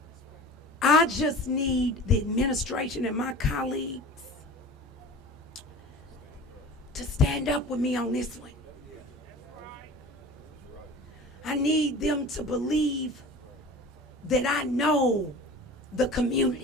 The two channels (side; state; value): both; normal; correlation 0.38